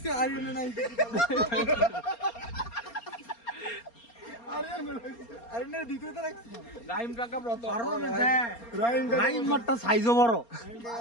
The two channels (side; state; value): right; late; 4.3 ms